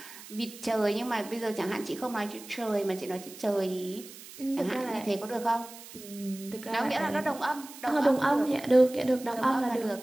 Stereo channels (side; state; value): right; noise; hiss, 16 dB below the sound